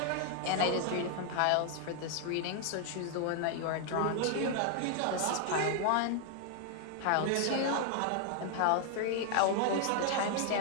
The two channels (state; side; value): different; both; correlation 0.00